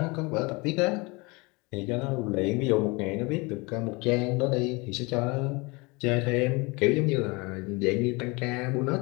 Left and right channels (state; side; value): quieter; right; 26.5 dB